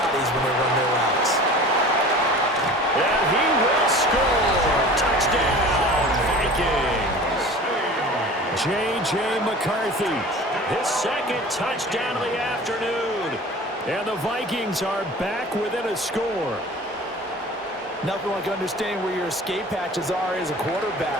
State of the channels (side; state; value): both; normal; correlation 0.40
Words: when they run their routes. And he will score. Touchdown, Vikings. J.J. McCarthy. His second touchdown of the afternoon. And the Vikings are back within a score. Nothing like understanding where your escape hatches are as a